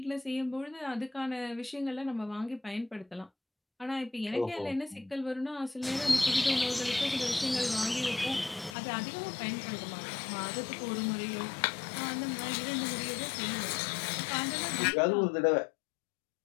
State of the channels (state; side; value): drops out; right; at 8.8 s